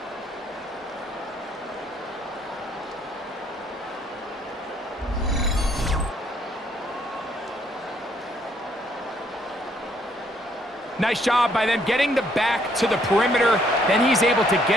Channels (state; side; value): normal; both; correlation 0.68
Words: Nice job by them getting the back to the perimeter. Then he's able to